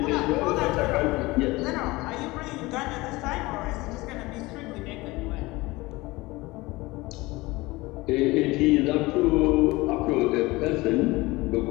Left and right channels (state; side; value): quieter; right; 21.4 dB